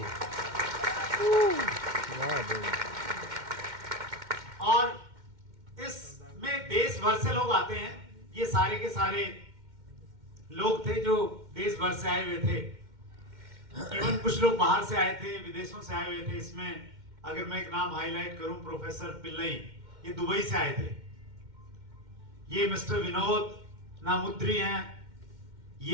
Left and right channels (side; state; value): left; late; 2.1 ms